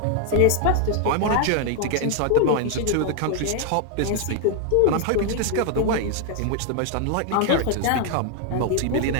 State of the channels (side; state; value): both; different; correlation 0.00